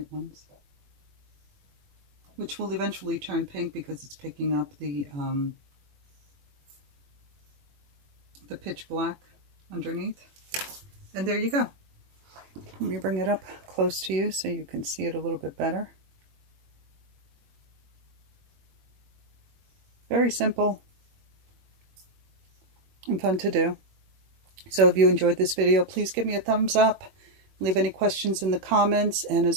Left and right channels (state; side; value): late; left; 21 ms